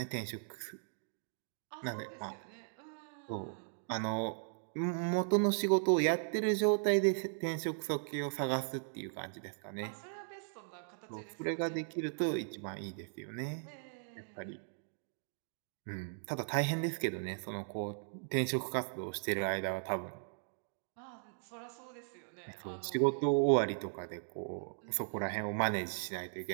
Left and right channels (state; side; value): silent; left; digital silence